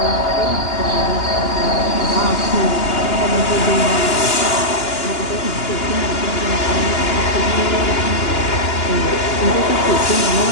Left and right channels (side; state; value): right; late; 2.9 ms